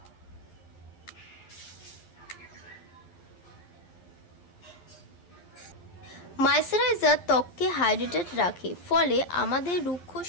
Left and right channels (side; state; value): right; late; 11 ms